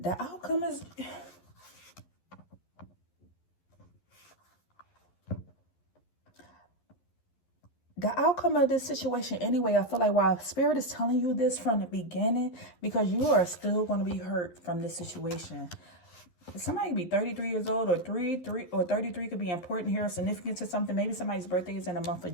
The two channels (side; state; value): right; late; 11 ms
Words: outcome is... the outcome of this situation anyway, I feel like while Spirit is telling you this from the beginning, because you are still going to be hurt from this situation. Somebody could be 33 years old, or 33 could be important here, or significant to something. Maybe somebody's birthday is in the month of